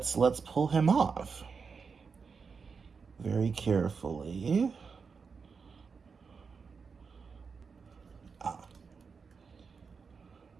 pull him off very carefully.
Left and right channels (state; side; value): quieter; left; 5.4 dB